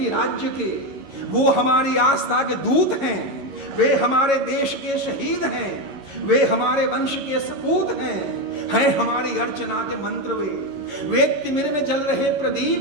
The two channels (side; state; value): left; late; 11 ms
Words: राज्य के, वो हमारी आस्था के दूत हैं, वे हमारे देश के शहीद हैं, वे हमारे वंश के सपूत हैं हमारी अर्चना के मंत्र, वे तिमिर में जल रहे